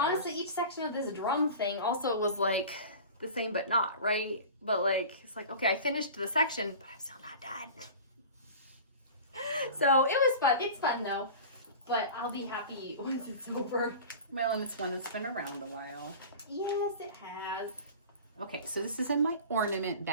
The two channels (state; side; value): inverted; both; correlation -0.36